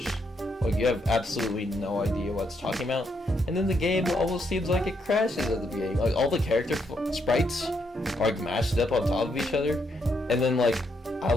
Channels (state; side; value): normal; both; correlation 0.77